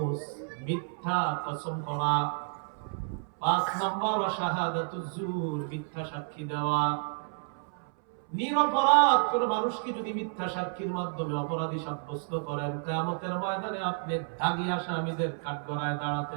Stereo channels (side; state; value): left; silent; 57 dB below the other